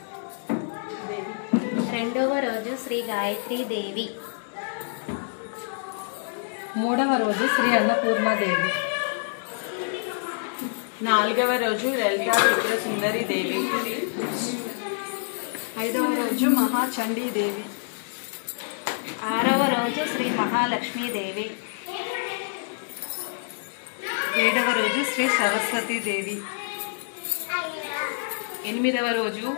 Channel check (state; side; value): silent; right; 61 dB below the other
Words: రెండవ రోజు శ్రీ గాయత్రీ దేవి. మూడవ రోజు శ్రీ అన్నపూర్ణాదేవి. నాలుగవ రోజు లలితా త్రిపుర సుందరి దేవి. ఐదవ రోజు మహాచండీదేవి. ఆరవ రోజు శ్రీ మహాలక్ష్మీదేవి. ఏడవ రోజు శ్రీ సరస్వతీదేవి. ఎనిమిదవ రోజు